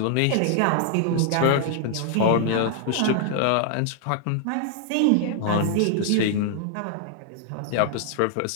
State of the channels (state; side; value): different; both; correlation 0.00